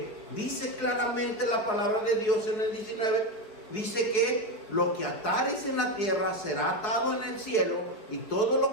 dice claramente la palabra de Dios en el 19, dice que lo que atares en la tierra será atado en el cielo, y todo lo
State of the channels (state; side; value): late; right; 4.9 ms